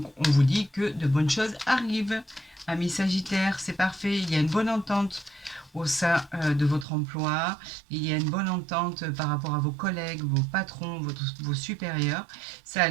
on vous dit que de bonnes choses arrivent. Amis Sagittaire, c'est parfait. Il y a une bonne entente au sein de votre emploi. Il y a une bonne entente par rapport à vos collègues, vos patrons, vos supérieurs. Ça a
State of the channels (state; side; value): drops out; left; at 6.9 s